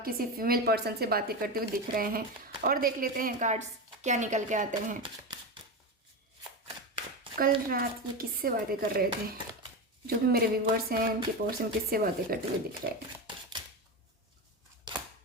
किसी फीमेल पर्सन से बातें करते हुए दिख रहे हैं। और देख लेते हैं कार्ड्स क्या निकल के आते हैं। कल रात ये किससे बातें कर रहे थे? जो भी मेरे व्यूवर्स हैं उनके पर्सन किससे बातें करते हुए दिख रहे हैं?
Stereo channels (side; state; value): both; normal; correlation 0.18